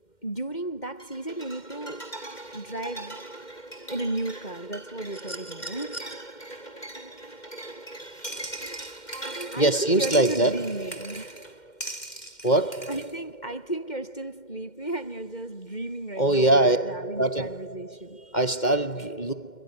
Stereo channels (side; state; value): right; late; 2.1 ms